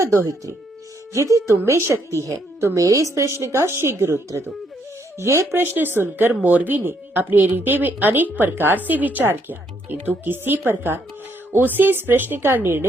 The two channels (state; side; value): normal; both; correlation 0.72